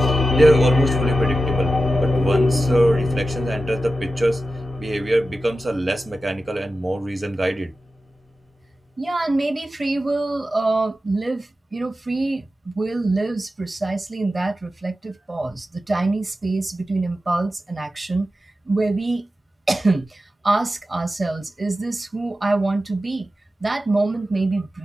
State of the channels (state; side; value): normal; both; correlation 0.92